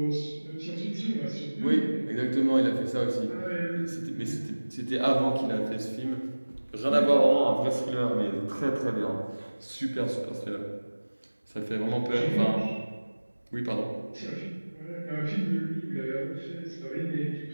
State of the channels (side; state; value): both; inverted; correlation -1.00